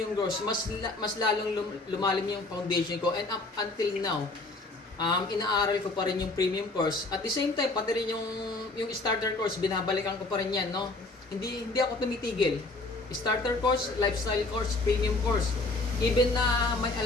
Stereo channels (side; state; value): right; quieter; 3.2 dB